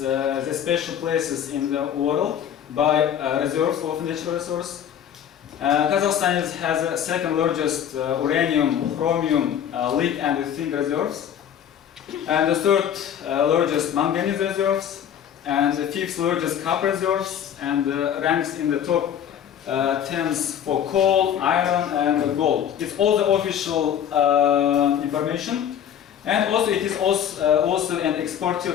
special places in the world by reserves of natural resource. Kazakhstan has the second largest uranium, chromium, lead and zinc reserves, and the third largest manganese reserves, and the fifth largest copper reserves, and ranks in the top 10s for coal, iron, and gold. It's all the official information, and also it is also an exporter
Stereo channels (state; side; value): quieter; right; 9.3 dB